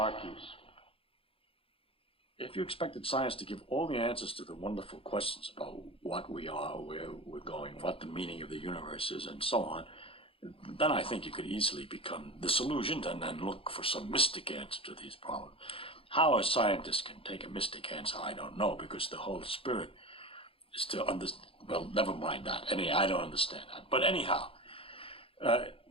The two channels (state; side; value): late; right; 0.27 ms